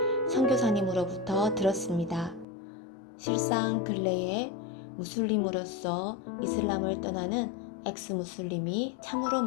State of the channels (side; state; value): right; drops out; at 2.5 s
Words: 선교사님으로부터 들었습니다. 실상 근래에 무슬림으로서 이슬람을 떠나는 엑스무슬림이 참으로